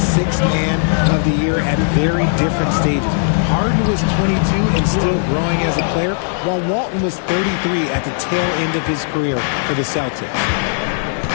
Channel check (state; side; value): silent; right; 58 dB below the other